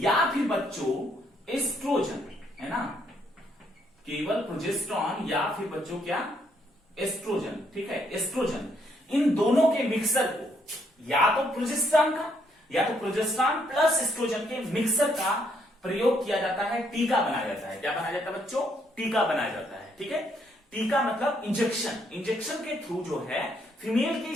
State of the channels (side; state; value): both; normal; correlation 0.72